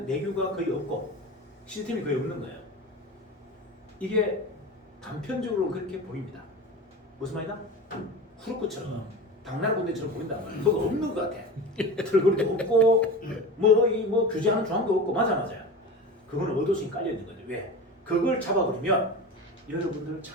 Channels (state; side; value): normal; both; correlation 0.30